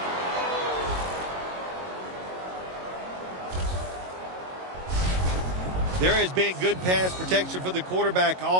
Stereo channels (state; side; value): late; left; 22 ms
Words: There has been good pass protection for the quarterback